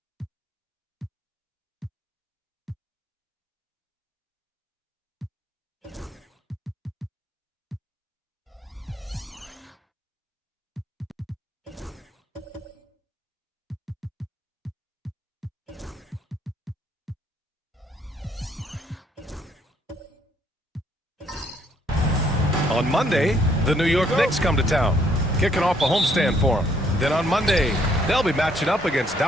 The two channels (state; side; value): normal; both; correlation 0.68